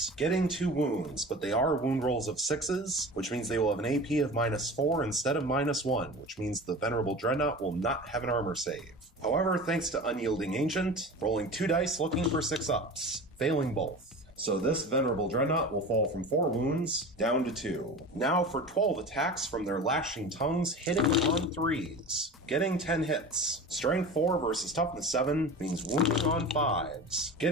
getting 2 wounds, but they are wound rolls of 6s, which means they will have an AP of -4 instead of -1, which means the Venerable Dreadnought will not have an armor save. However, thanks to Unyielding Ancient, rolling 2 dice looking for 6-ups, failing both. So this Venerable Dreadnought will fall from 4 wounds down to 2. Now for 12 attacks from their Lashing Tongues, hitting on 3s, getting 10 hits. Strength 4 versus Toughness 7 means wounding on 5s,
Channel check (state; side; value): normal; both; correlation 0.34